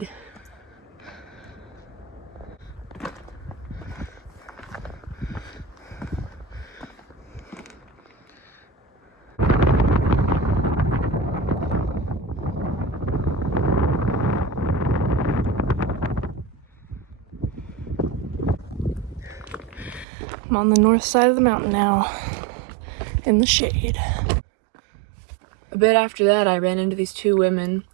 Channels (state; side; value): drops out; left; at 20.1 s